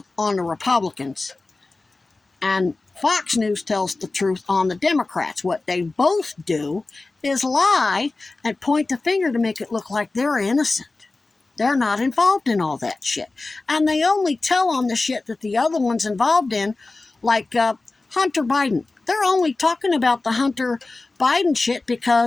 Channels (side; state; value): right; quieter; 3.4 dB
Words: on the Republicans, and Fox News tells the truth on the Democrats. What they both do is lie and point the finger to make it look like they're innocent. They're not involved in all that shit. And they only tell on the shit that the other one's involved in, like Hunter Biden. They're only talking about the Hunter Biden shit